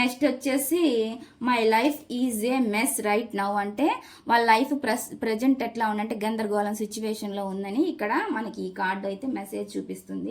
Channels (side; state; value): both; identical; correlation 1.00